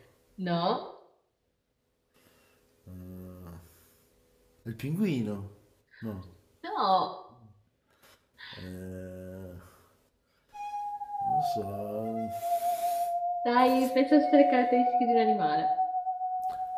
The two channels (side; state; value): both; identical; correlation 1.00